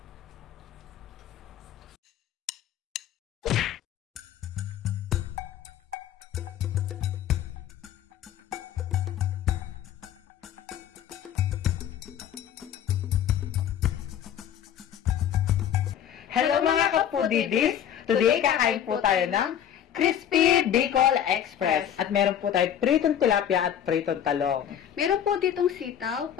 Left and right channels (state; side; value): quieter; right; 9.8 dB